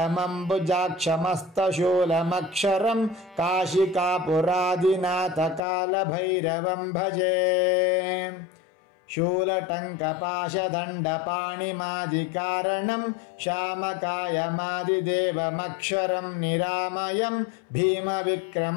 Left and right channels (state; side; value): drops out; right; at 5.6 s